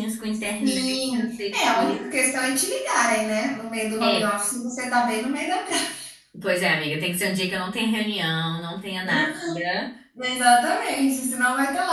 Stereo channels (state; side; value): identical; both; correlation 1.00